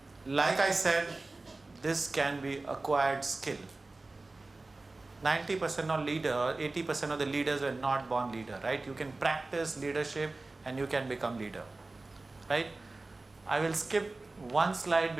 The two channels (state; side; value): quieter; left; 3.2 dB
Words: like I said, this can be acquired skill. 90% of leader, 80% of the leaders were not born leader, right? You can practice leadership and you can become leader, right? I will skip one slide